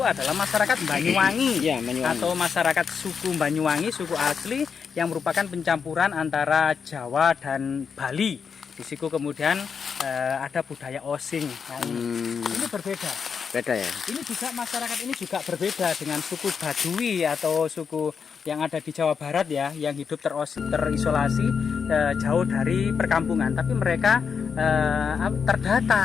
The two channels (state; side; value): quieter; right; 6.3 dB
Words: adalah masyarakat Banyuwangi, ya, Banyuwangi, atau masyarakat suku Banyuwangi, suku asli yang merupakan pencampuran antara Jawa dan Bali. Di situ kemudian ada budaya Osing. Nah, ini berbeda. Beda ya. Ini juga masyarakat ini juga berbeda dengan suku Baduy atau suku yang ada di Jawa Barat ya, yang hidup terisolasi jauh dari perkampungan, tapi mereka